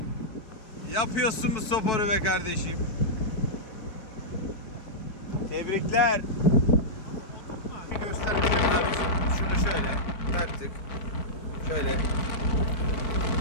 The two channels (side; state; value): right; late; 4.6 ms